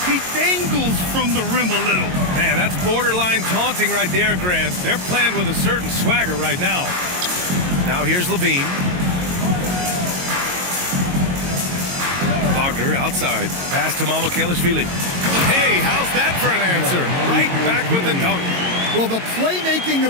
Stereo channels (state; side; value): late; left; 22 ms